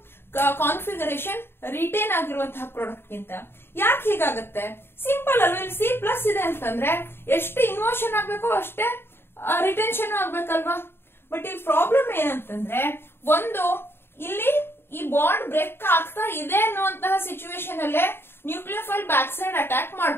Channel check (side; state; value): right; late; 0.11 ms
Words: ಕಾನ್ಫಿಗರೇಷನ್ ರಿಟೇನ್ ಆಗಿರುವಂತಹ ಪ್ರಾಡಕ್ಟ್ ಗಿಂತ. ಯಾಕೆ ಹೀಗಾಗುತ್ತೆ, ಸಿಂಪಲ್ ಅಲ್ವಾ. ಇಲ್ಲಿ C+ ಇದೆ ಅಂತಂದ್ರೆ ಎಷ್ಟು ಇನ್ವರ್ಷನ್ ಆಗ್ಬೇಕೋ ಅಷ್ಟೇ ರಿಟೆನ್ಷನ್ ಆಗ್ಬೇಕಲ್ವಾ. ಬಟ್ ಇಲ್ಲಿ ಪ್ರಾಬ್ಲಮ್ ಏನಂತಂದ್ರೆ, ಒಂದು ಇಲ್ಲಿ ಈ ಬಾಂಡ್ ಬ್ರೇಕ್ ಆಗ್ತಾ ಇದೆ ಅನ್ನುವಂತಹ ಸಿಚುವೇಶನ್ ಅಲ್ಲೇ ನ್ಯೂಕ್ಲಿಯೋಫೈಲ್ ಬ್ಯಾಕ್ ಸೈಡ್ ಅಟ್ಯಾಕ್